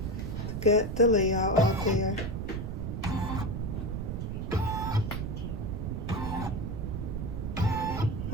to get the layout out there.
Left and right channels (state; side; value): noise; right; rumble, 3 dB below the sound